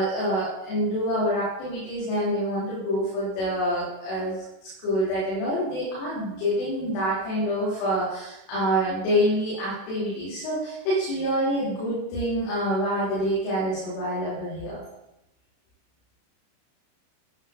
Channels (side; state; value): right; late; 32 ms